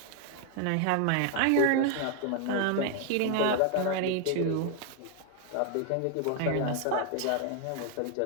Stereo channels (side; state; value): both; different; correlation 0.00